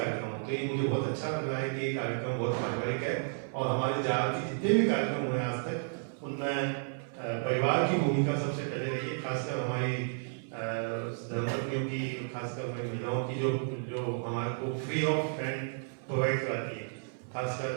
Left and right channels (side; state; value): left; silent; 56 dB below the other